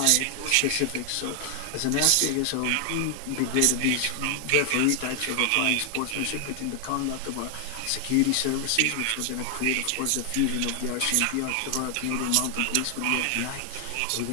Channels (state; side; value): different; both; correlation 0.00